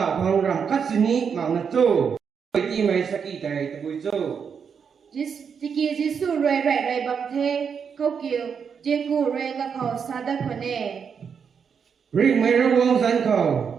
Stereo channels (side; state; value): left; quieter; 6.7 dB